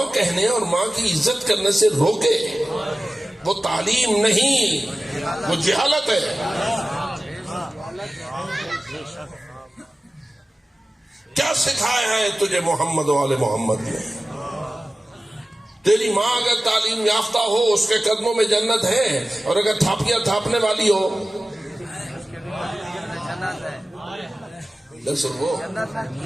کہنے اور ماں کی عزت کرنے سے روکے وہ تعلیم نہیں، وہ جہالت ہے. کیا سکھایا ہے تجھے محمد و آل محمد نے؟ تیری ماں اگر تعلیم یافتہ ہو اس کے قدموں میں جنت ہے، اور اگر تھاپیاں تھاپنے والی ہو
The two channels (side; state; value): both; normal; correlation 0.96